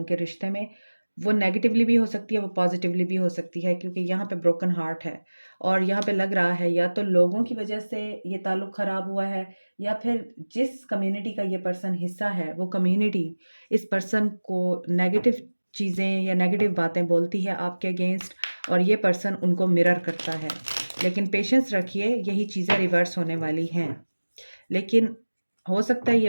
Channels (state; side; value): inverted; both; correlation -1.00